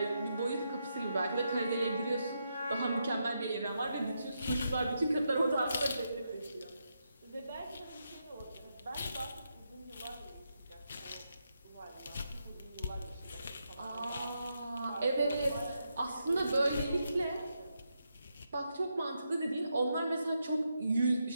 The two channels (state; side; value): inverted; both; correlation -0.83